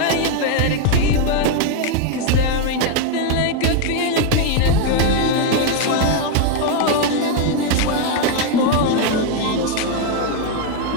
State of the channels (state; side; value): different; both; correlation 0.01